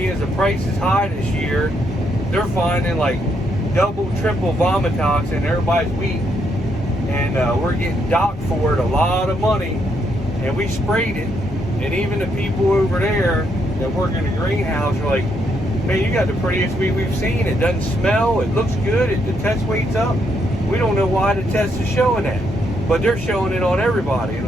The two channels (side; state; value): both; normal; correlation 0.76